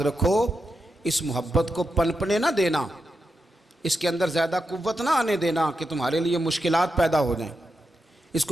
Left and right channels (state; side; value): normal; both; correlation 0.87